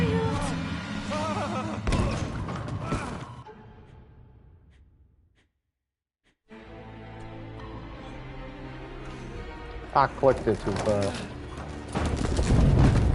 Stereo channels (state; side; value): identical; both; correlation 1.00